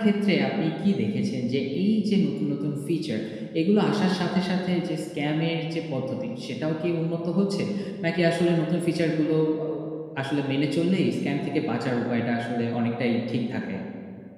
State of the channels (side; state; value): both; identical; correlation 1.00